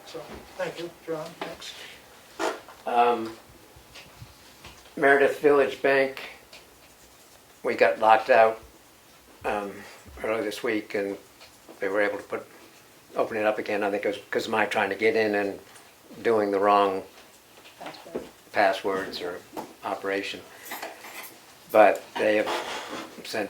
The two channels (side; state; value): both; identical; correlation 1.00